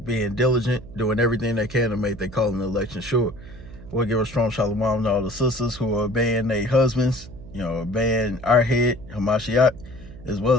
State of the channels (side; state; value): right; noise; hum, 16 dB below the sound